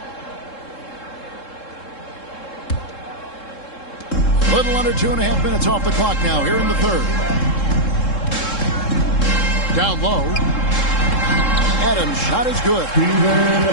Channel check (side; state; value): right; late; 3.7 ms